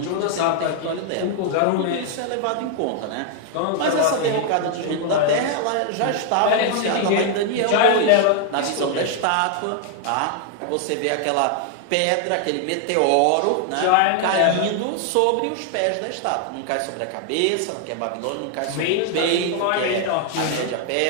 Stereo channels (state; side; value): different; both; correlation 0.00